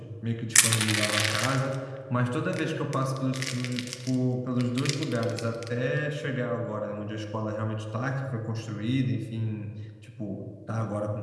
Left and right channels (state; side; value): identical; both; correlation 1.00